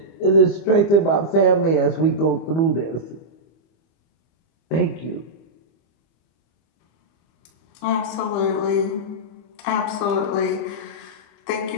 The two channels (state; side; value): late; right; 25 ms